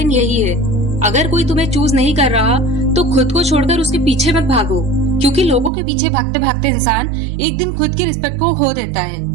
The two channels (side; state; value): left; drops out; at 5.7 s